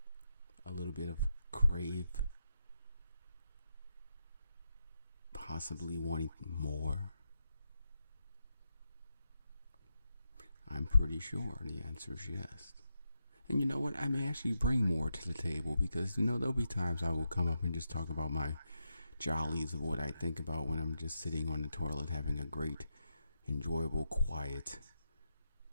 A little bit of crave. Possibly wanting more. I'm pretty sure the answer is yes. And you know what? I may actually bring more to the table because, there'll be times I will come up and just talk about my jollies of what I think about when I'm just sitting on the toilet having a great, enjoyable, quiet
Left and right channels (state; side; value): inverted; both; correlation -0.84